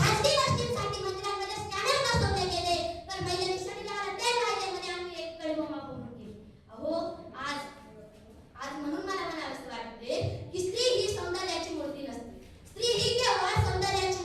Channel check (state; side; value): identical; both; correlation 1.00